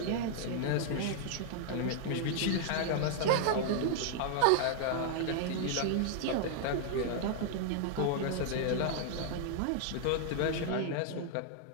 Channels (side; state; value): both; different; correlation -0.01